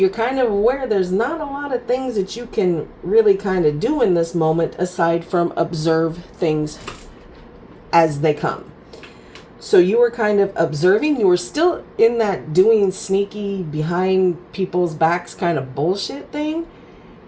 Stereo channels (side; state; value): both; identical; correlation 1.00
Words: kind of aware there's not a lot of things that you can really kind of do in this moment aside from observe things as they come. So you were kind of observing. You were still in that doing sneaky behind people's backs kind of bullshit thing.